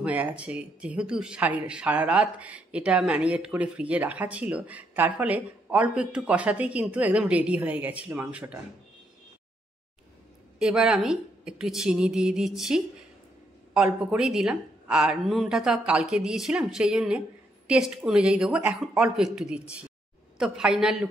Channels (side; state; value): both; normal; correlation 0.76